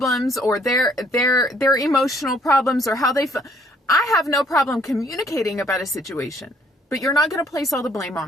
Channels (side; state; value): both; normal; correlation 0.64